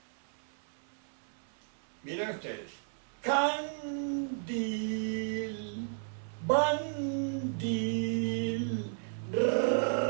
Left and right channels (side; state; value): left; silent; 55 dB below the other